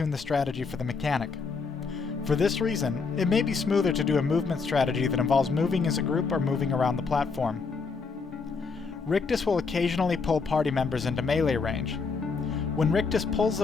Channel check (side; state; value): right; quieter; 4.8 dB